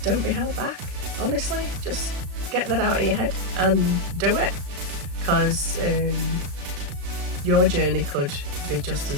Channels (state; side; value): late; left; 35 ms